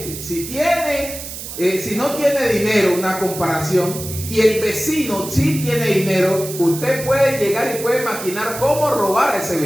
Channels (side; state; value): right; noise; hiss, 10 dB below the sound